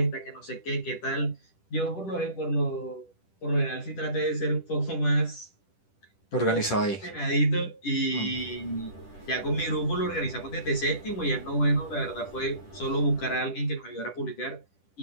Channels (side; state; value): right; late; 10 ms